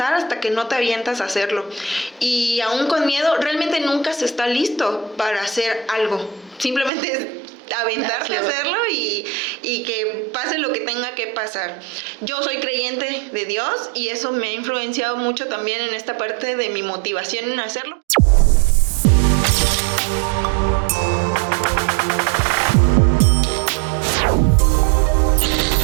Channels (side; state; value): left; drops out; at 6.9 s